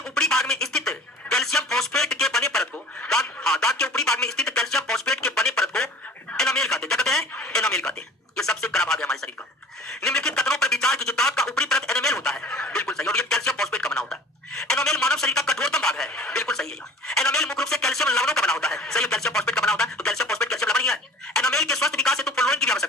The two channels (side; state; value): both; normal; correlation 0.45